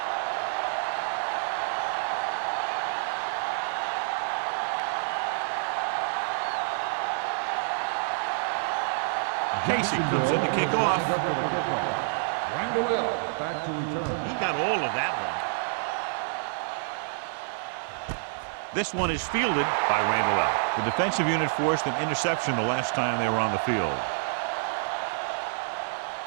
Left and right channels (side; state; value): left; silent; digital silence